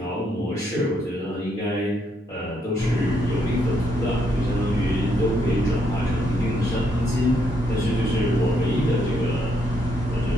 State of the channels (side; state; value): both; normal; correlation 0.75